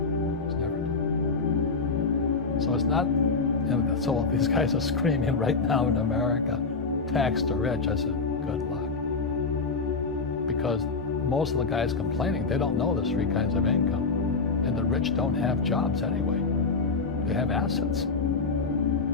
is never done. So it's not, you know, so these guys are screaming right now in America, tax the rich. I said, good luck. Because most of the guys complaining, they don't know there's 3 kinds of income. And the rich don't have jobs anyway. They have assets.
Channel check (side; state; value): right; quieter; 4.3 dB